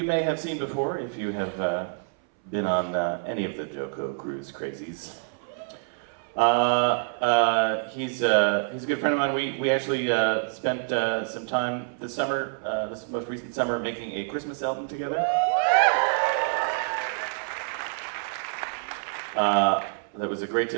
may have seen before if you have been on any of the JoCo cruise crazies. He's a good friend of mine. We actually spent some time this summer, this most recent summer, making a Christmas album together. That was a great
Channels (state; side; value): silent; left; 60 dB below the other